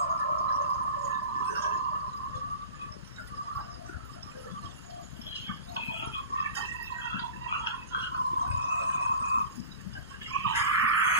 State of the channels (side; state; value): both; inverted; correlation -0.36